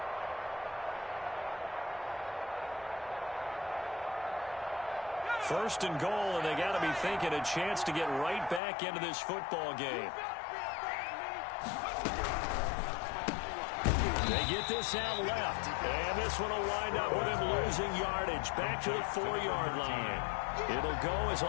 First and goal, and they got to be thinking a chance to get right back into this football game. They get this out left, and this one will wind up with him losing yardage back to the 4-yard line. It'll go as a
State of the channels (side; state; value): right; drops out; at 8.6 s